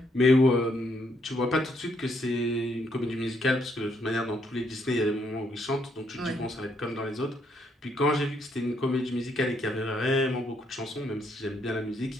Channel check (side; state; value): both; normal; correlation 0.73